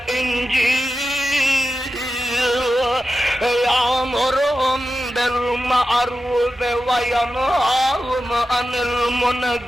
یامرہم بالمعروف وينهاهم عن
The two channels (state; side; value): normal; both; correlation 0.92